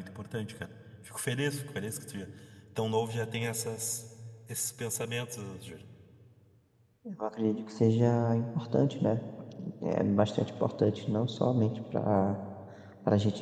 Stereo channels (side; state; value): both; identical; correlation 1.00